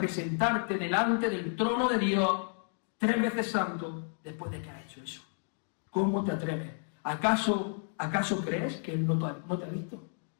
delante del trono de Dios 3 veces santo después de que has hecho eso? ¿Cómo te atreves? ¿Acaso crees que Él no te ha visto?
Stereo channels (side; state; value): right; silent; 57 dB below the other